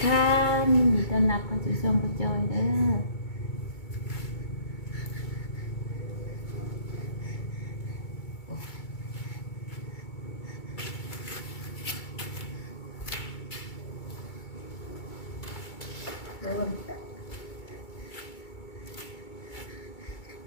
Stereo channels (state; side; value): late; right; 2.3 ms